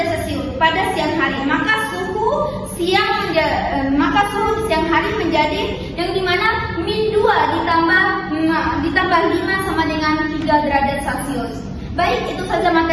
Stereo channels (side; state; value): both; identical; correlation 1.00